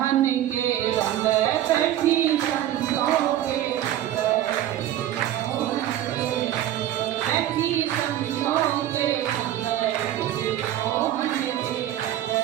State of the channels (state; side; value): quieter; left; 12.5 dB